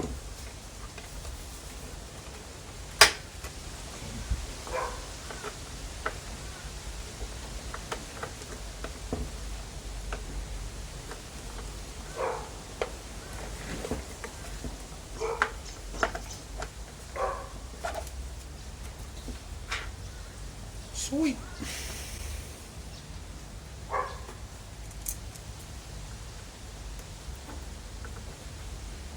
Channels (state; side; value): identical; both; correlation 1.00